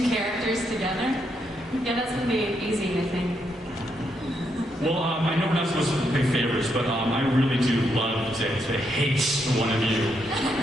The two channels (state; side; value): normal; both; correlation 0.78